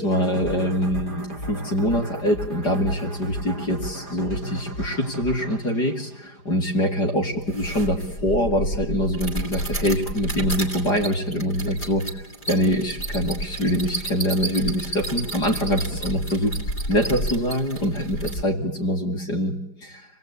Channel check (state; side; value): late; right; 4.9 ms